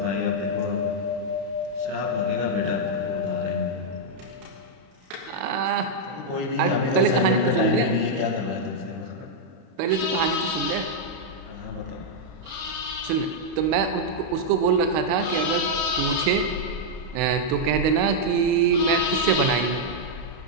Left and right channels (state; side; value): late; left; 32 ms